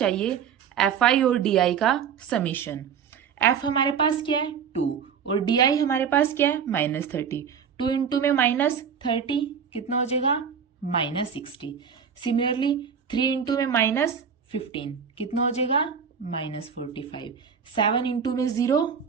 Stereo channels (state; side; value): quieter; left; 7.1 dB